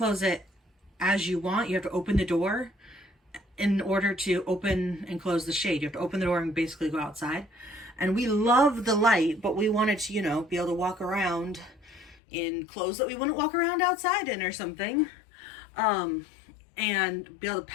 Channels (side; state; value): right; drops out; at 12.2 s